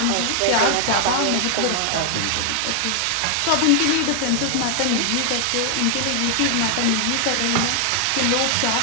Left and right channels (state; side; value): different; both; correlation 0.00